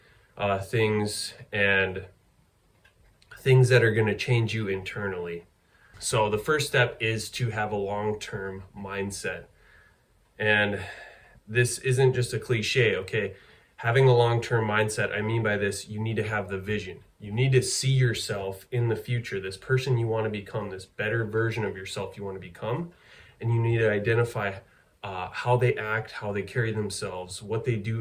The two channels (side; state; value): both; identical; correlation 1.00